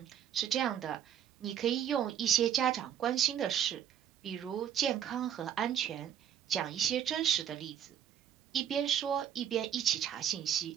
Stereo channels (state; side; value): quieter; left; 9.6 dB